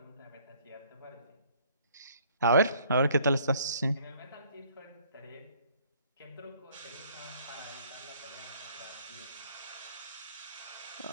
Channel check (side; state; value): both; inverted; correlation -0.59